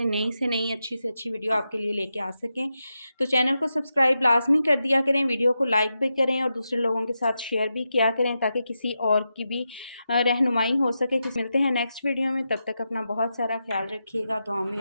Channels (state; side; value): inverted; both; correlation -0.88